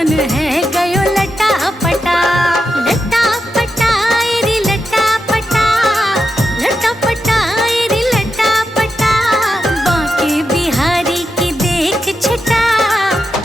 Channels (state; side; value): normal; both; correlation 0.87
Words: है गयो लटा पटा। लटा पटा रे लटा पटा, लटा पटा रे